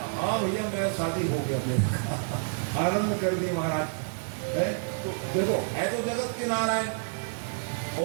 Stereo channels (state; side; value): silent; left; digital silence